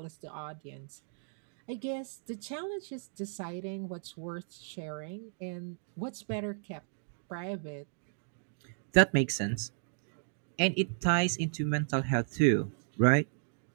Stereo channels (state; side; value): silent; left; digital silence